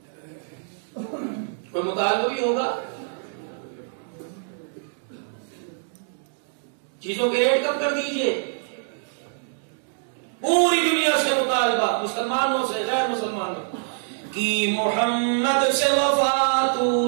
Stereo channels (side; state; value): left; silent; digital silence